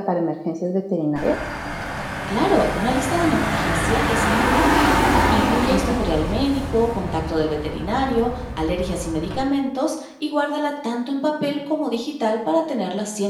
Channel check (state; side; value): identical; both; correlation 1.00